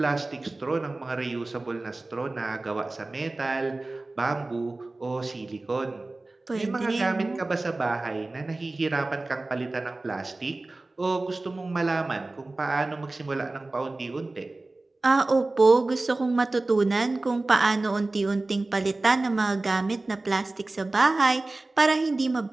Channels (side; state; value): left; quieter; 3.1 dB